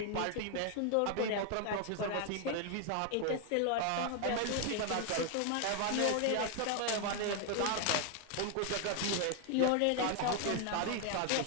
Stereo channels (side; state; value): both; different; correlation 0.01